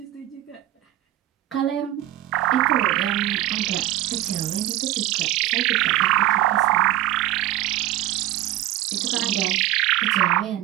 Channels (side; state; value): left; quieter; 14.6 dB